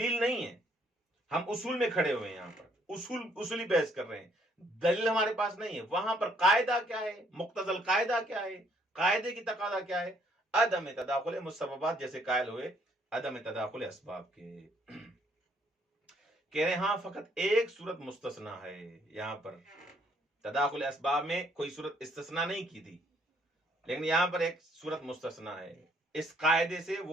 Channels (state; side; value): normal; both; correlation 0.67